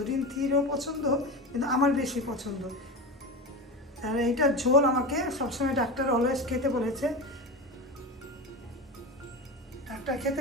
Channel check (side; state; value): both; normal; correlation 0.24